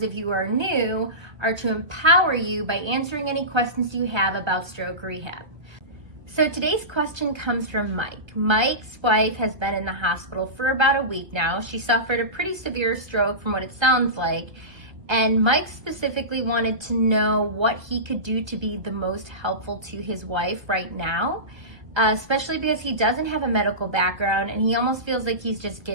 of you who are new, are to empower you by answering any questions you have about stroke rehab. So today's question comes from Mike. Mike's wife has been in the hospital for about a week now. She suffered a pretty severe stroke from what it sounds like. And Mike specifically wanted to know what he could do to be the most helpful to his wife right now, especially because he doesn't have a medical background and he almost feels like he's just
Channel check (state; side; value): late; left; 1.3 ms